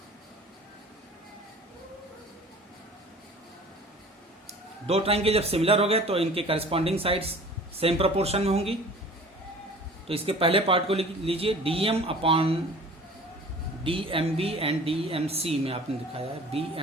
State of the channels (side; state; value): both; normal; correlation 0.45